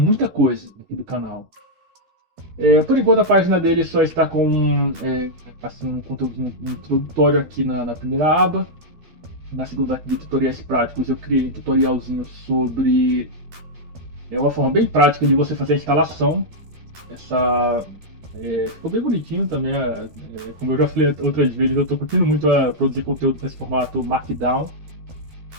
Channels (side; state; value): left; late; 13 ms